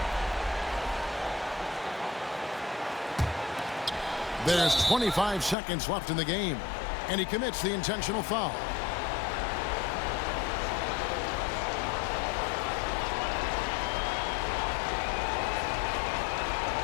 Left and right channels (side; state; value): right; drops out; at 5.6 s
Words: There's 25 seconds left in the game. And he commits the intentional foul.